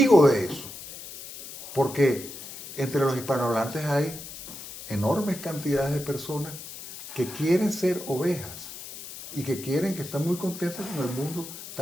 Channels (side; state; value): left; noise; hiss, 12 dB below the sound